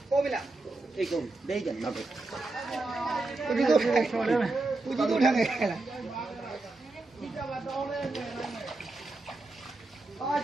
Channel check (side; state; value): left; quieter; 3.1 dB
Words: 过不了，这个没人那个，估计都开了，估计都开了。啊，